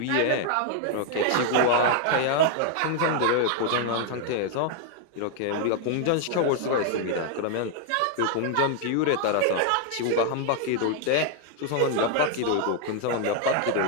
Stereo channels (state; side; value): different; both; correlation 0.00